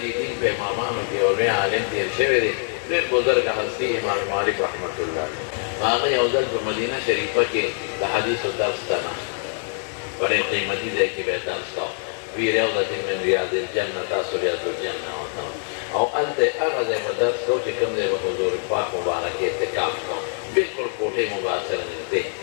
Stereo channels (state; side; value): silent; right; 63 dB below the other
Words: دې دین په امامانو کې یو لوی عالم تېر شوی دی ډېر بزرګه هستي امام مالک رحمت الله علیه هغه یو ځل په مدینه شریفه کې د حدیثو درس ته ناست بڑے قیمتی ځای کې به یې درس کاوه فی روضة من ریاض الجنة تاسو ریاض الجنة ورته او هلته هغه ځای به درس کوو چې کوم ځای به حضور پاک مبارک اعتکاف کوو بلکل کوټې مبارک سره نږدې